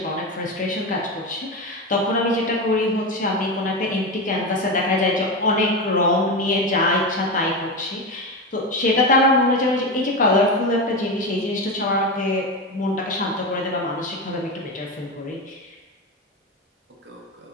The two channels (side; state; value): both; normal; correlation 0.18